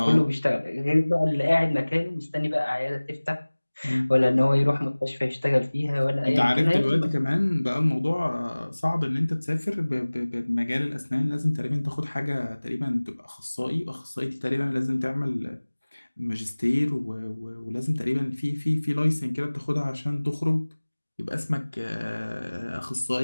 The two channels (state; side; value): inverted; both; correlation -1.00